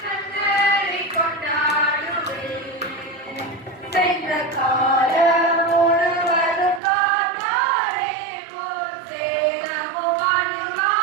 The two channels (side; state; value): left; drops out; at 6.8 s